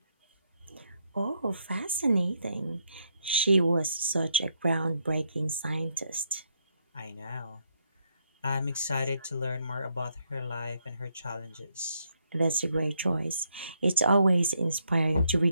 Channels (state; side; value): inverted; both; correlation -0.76